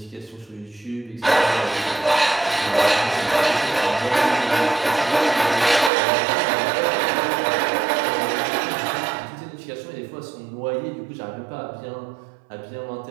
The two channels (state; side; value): drops out; left; at 5.9 s